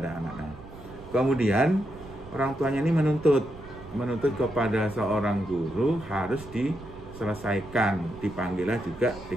anak. Nah, kemudian orang tuanya ini menuntut kepada seorang guru harus diselesaikan, dipanggillah juga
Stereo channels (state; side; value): noise; right; rumble, 17 dB below the sound